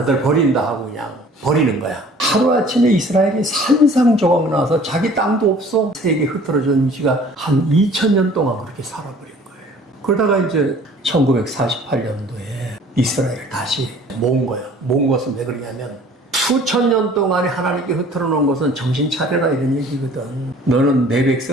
버린다 하고 그냥 버리는 거야. 하루아침에 이스라엘이 산상조각 나서 자기 땅도 없어 세계 흩어져진 지가 한 2000년 동안 그렇게 살아버린 거예요. 그러다가 이제 1948년도에 이스라엘을 다시 모은 거예요. 모은 것은 왜 그러냐면 수천 년 동안에 하나님께 흐트러 놓은 것은 정신 차려라 이런 얘기거든. 너는 내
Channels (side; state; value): both; normal; correlation 0.51